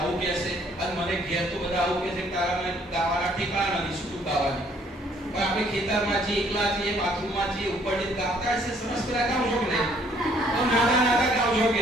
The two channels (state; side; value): normal; both; correlation 0.63